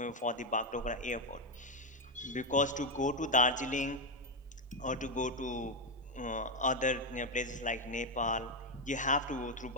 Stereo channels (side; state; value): both; normal; correlation 0.05